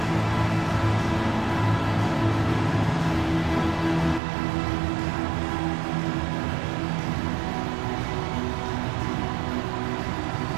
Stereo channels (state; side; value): drops out; left; at 4.2 s